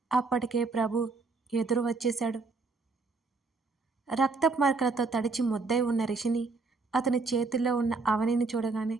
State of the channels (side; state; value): left; quieter; 4.0 dB